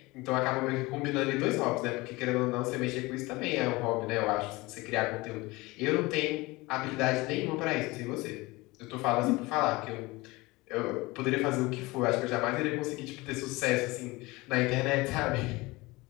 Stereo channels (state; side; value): quieter; right; 22.2 dB